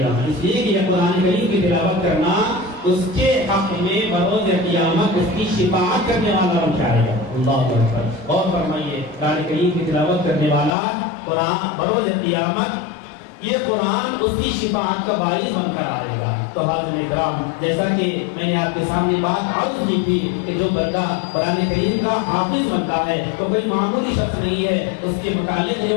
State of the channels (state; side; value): drops out; right; at 10.8 s